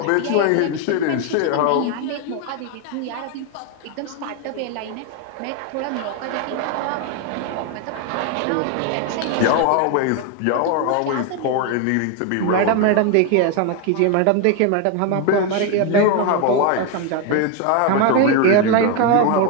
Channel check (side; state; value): both; different; correlation 0.01